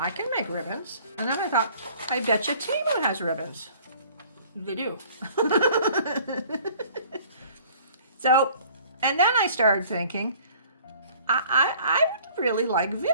can make ribbons. And then I thought, I bet you Timu has ribbons. They do. So, and then I started thinking, I would really like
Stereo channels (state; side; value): inverted; both; correlation -0.52